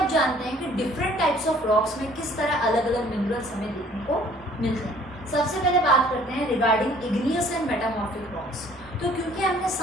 जानते हैं कि डिफरेंट टाइप्स ऑफ रॉक्स में किस तरह अलग अलग मिनरल्स हमें देखने को मिलते हैं। सबसे पहले बात करते हैं regarding igneous and metamorphic rocks. तो क्योंकि हमने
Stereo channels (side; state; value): both; normal; correlation 0.56